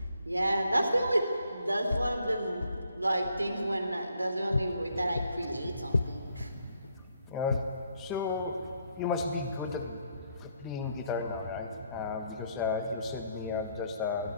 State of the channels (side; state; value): both; inverted; correlation -0.71